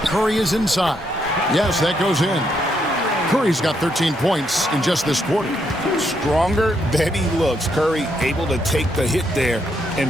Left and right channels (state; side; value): normal; both; correlation 0.76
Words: Curry is inside. Yes, that goes in. Curry's got 13 points in just this quarter. Stronger than he looks. Curry able to take the hit there